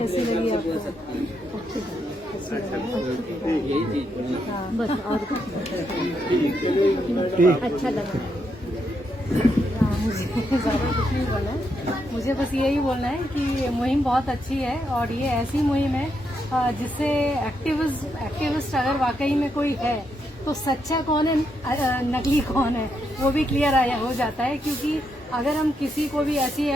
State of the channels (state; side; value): normal; both; correlation 0.80